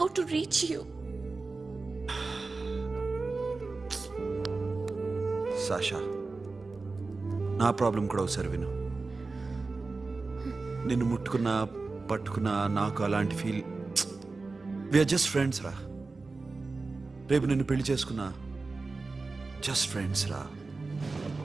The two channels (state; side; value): quieter; left; 3.8 dB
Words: to reach you. Sasha నా ప్రాబ్లం కూడా ఒకసారి విను. నిన్ను ముట్టుకున్నా పట్టుకున్నా నాకు అలాంటి ఫీల్. వీఆర్ జస్ట్ ఫ్రెండ్స్ రా. రేపు నిన్ను పెళ్లి చేసుకున్నా జస్ట్ ఫ్రెండ్స్ రా.